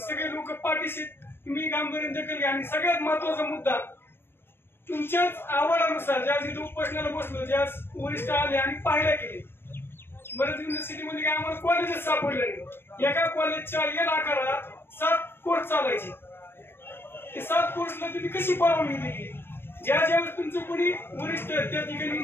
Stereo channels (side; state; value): right; late; 0.11 ms